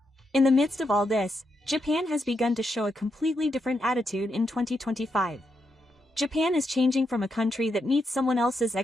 In the midst of all this, Japan has begun to show a completely different attitude in 2025. Japan is changing from a country that meets someone else's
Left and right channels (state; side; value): normal; both; correlation 0.83